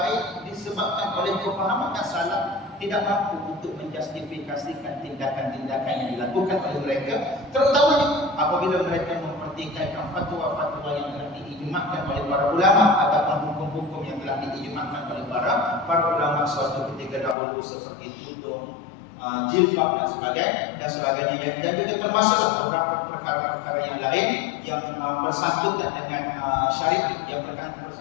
disebabkan oleh kefahaman yang salah tidak mampu untuk menjustifikasikan tindakan-tindakan yang dilakukan oleh mereka, terutamanya apabila mereka mempertikaikan fatwa-fatwa yang telah diijma'kan oleh para ulama ataupun hukum-hukum yang telah diijma'kan oleh para ulama suatu ketika dahulu, seperti tudung, jilbab dan sebagainya, dan juga termasuk beberapa perkara-perkara yang lain yang bersangkutan dengan syariat, yang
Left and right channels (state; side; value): drops out; right; at 17.4 s